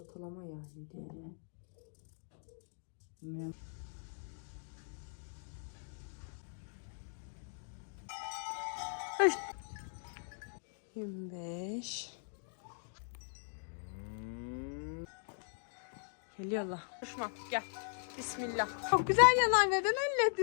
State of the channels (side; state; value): right; silent; digital silence